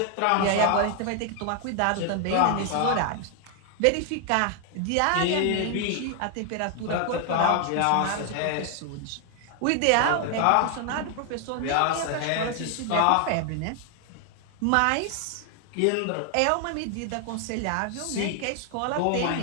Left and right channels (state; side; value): different; both; correlation 0.00